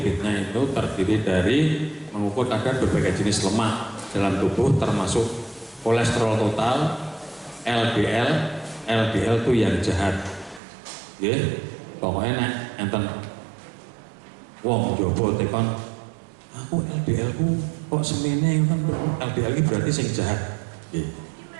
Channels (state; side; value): drops out; left; at 10.6 s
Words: itu terdiri dari mengukur kadar berbagai jenis lemak dalam tubuh termasuk kolesterol total, LDL, LDL itu yang jahat. Pokoknya nek enten wong jowo tekon aku LDL ku kok semene kan LDL ini berarti sing jahat.